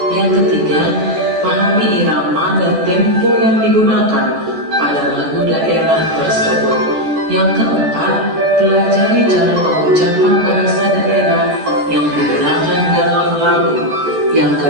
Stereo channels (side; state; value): left; late; 14 ms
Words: Yang ketiga, pahami irama dan tempo yang digunakan pada lagu daerah tersebut. Yang keempat, pelajari cara pengucapan bahasa daerah yang digunakan dalam lagu. Yang